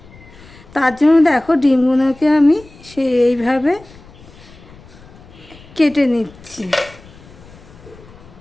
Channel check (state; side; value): noise; left; rumble, 22 dB below the sound